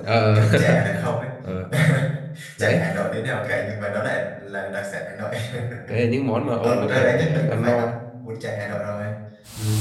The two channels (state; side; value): identical; both; correlation 1.00